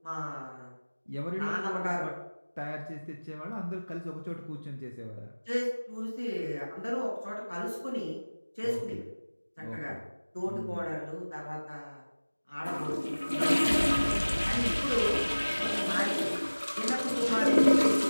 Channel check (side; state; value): both; inverted; correlation -1.00